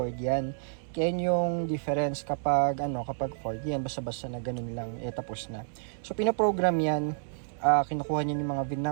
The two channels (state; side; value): silent; left; 58 dB below the other